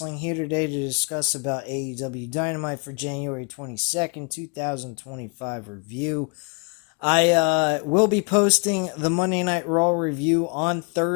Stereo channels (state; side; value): quieter; right; 34.0 dB